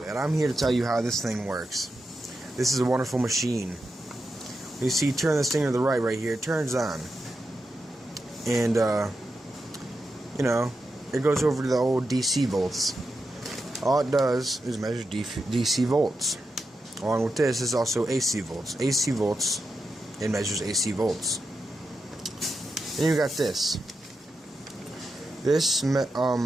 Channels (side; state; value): both; normal; correlation 0.88